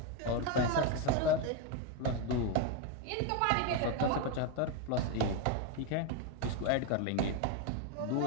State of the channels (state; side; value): different; both; correlation 0.02